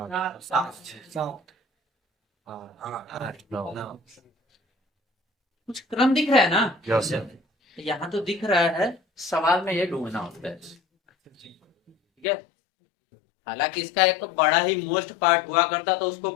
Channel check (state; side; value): drops out; right; at 12.2 s